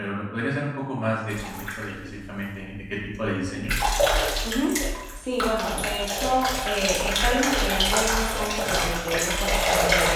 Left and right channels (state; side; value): identical; both; correlation 1.00